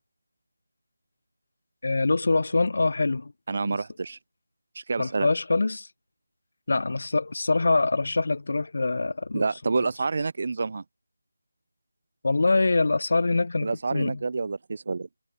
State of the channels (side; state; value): both; inverted; correlation -0.96